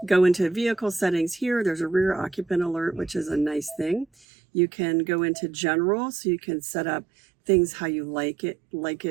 into vehicle settings here. There's a rear occupant alert, which is a nice thing. You can go into general, so you can set up things how you like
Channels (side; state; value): left; drops out; at 4.2 s